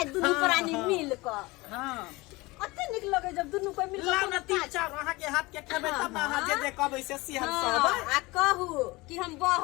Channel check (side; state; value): right; quieter; 22.4 dB